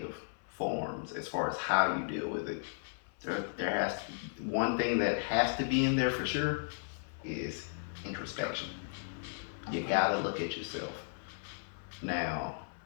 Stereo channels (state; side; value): silent; right; 54 dB below the other